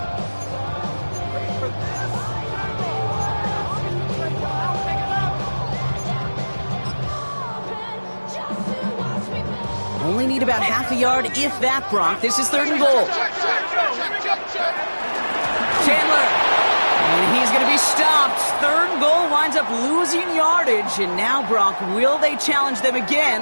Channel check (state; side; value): inverted; both; correlation -1.00